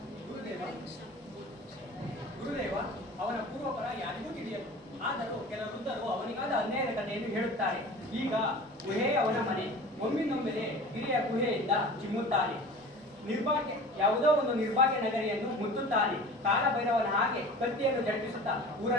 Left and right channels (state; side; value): normal; both; correlation 0.39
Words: ಗುರುದೇವ, ಅವನ ಪೂರ್ವಪರ ಯಾರಿಗೂ ತಿಳಿಯದು. ಆದರೂ ಕೆಲ ವೃದ್ಧರು ಅವನಿಗಾದ ಅನ್ಯಾಯದ ಕಥೆಯನ್ನು ಹೇಳುತ್ತಾರೆ. ಈಗ ಗುಹೆ ಅವನ ಮನೆ. ಒಮ್ಮಿನೊಮ್ಮೆಲೆ ಗಿರಿಯ ಗುಹೆಯಿಂದ ಚಿಮ್ಮುತ್ತಾನೆ. ನಿರ್ಭಾಗ್ಯ ಯಾವುದೋ ಒಂದು ನಿರ್ಭಾಗ್ಯ ನಗರಿಯನ್ನು ಮುತ್ತುತ್ತಾನೆ. ಕಾಲಭೈರವನ ಹಾಗೆ ಕತ್ತಿಯನ್ನು ಜಡಿಸುತ್ತಾ